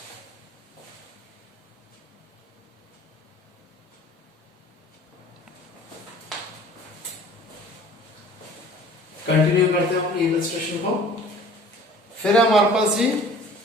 कंटिन्यू करते हैं अपने इलस्ट्रेशन को। फिर हमारे पास जी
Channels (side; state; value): both; normal; correlation 0.49